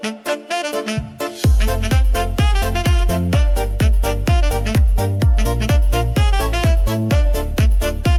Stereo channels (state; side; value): identical; both; correlation 1.00